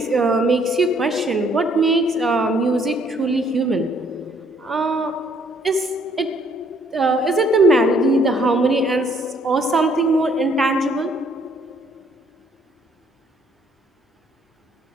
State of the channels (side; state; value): both; normal; correlation 0.65